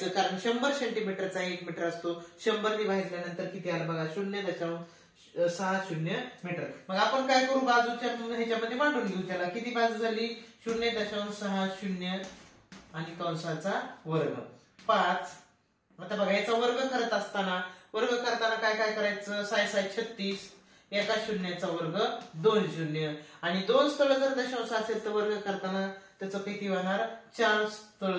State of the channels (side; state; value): both; identical; correlation 1.00